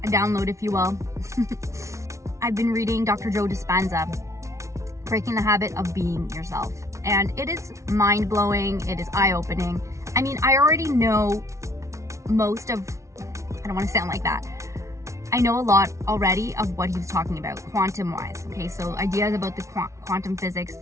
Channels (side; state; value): left; late; 0.14 ms